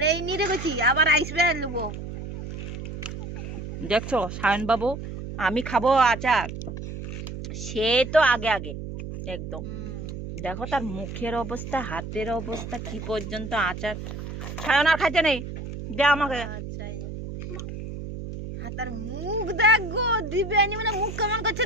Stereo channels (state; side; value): noise; right; hum, 8 dB below the sound